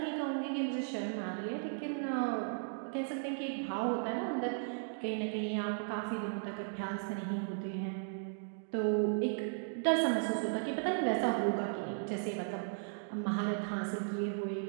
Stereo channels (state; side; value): silent; left; digital silence